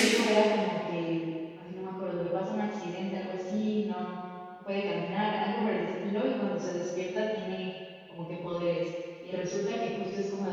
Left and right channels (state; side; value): identical; both; correlation 1.00